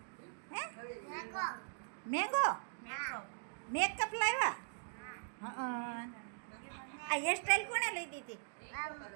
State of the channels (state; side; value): silent; left; digital silence